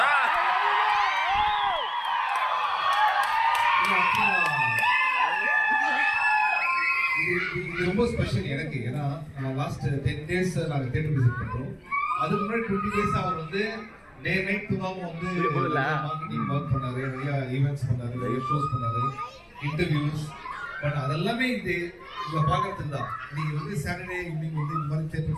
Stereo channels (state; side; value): identical; both; correlation 1.00